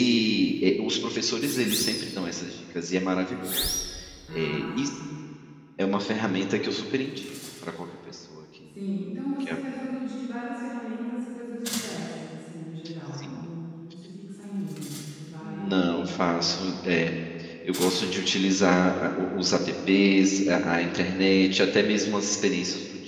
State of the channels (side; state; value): both; identical; correlation 1.00